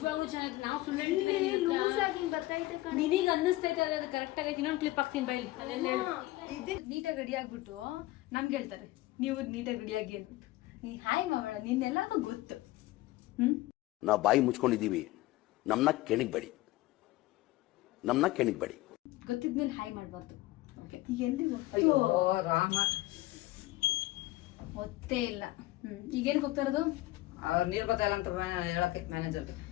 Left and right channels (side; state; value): right; quieter; 18.2 dB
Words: ಚೆನ್ನಾಗಿದೆ. ನಾವು ಸುಳ್ಳು ನಿನಗೆ ಅನ್ನಿಸ್ತೈತೆ ಅದು ಕರೆಕ್ಟ್ ಆಗೈತೆ. ಇನ್ನೊಂದು ಕ್ಲಿಪ್ ಹಾಕ್ತೀನಿ ಬೈ. ನೀಟಾಗಿ ರೆಡಿ ಆಗ್ಬಿಟ್ಟು ನಮ್ಗೆ ಹೇಳ್ತಾರೆ ನೀವು ನೀಟಾಗಿ ರೆಡಿ ಆಗಿ ಅಂದ್ಬಿಟ್ಟು. ನೀ ಹಾಯ್ ಮಾವಳ, ನಿನ್ನೆಲ್ಲ ಗೊತ್ತು. ನಾವು ಬಾಯಿ ಮುಚ್ಕೊಂಡಿದ್ದೀವಿ, ನಮ್ಮನ್ನ ಕೆಣಿಗ್ಬೇಡಿ. ಗೊತ್ತಿದ್ಮೇಲೆ ಹಾಯ್ ಮಾಡಬಾರ್ದು. ಈಗ ಎಲ್ಲಿ ರಾಮ ಗೊತ್ತೇ ಇಲ್ಲ. ಈಗೇನಕ್ಕೆ ಹೋಗ್ತಾ ಇರೋದು? ನೀರ್ ಬರ್ತಾ ಇಲ್ಲ ಅಂತ ಹೇಳಕ್ಕೆ ಮ್ಯಾನೇಜರ್ಗೆ.